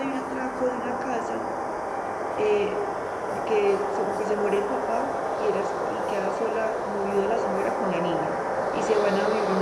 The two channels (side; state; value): both; identical; correlation 1.00